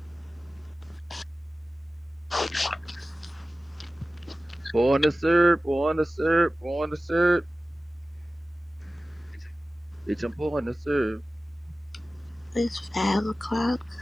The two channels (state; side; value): normal; both; correlation 0.96